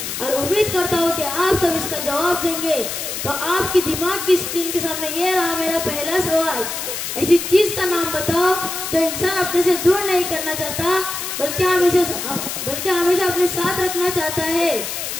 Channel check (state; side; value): noise; left; hiss, 5 dB below the sound